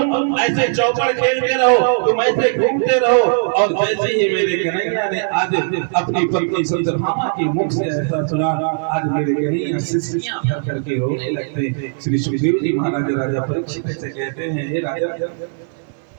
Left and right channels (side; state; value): left; silent; digital silence